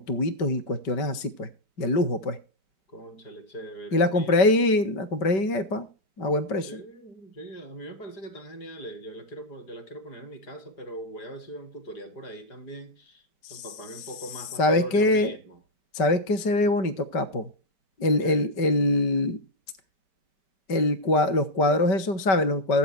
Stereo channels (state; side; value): late; right; 5.2 ms